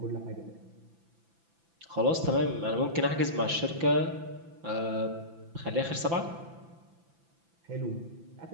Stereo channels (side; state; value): left; late; 5.9 ms